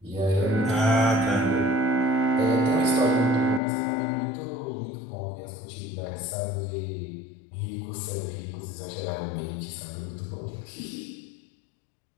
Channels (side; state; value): right; drops out; at 3.6 s